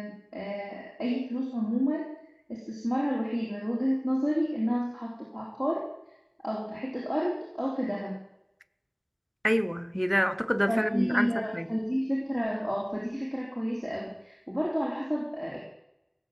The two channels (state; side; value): identical; both; correlation 1.00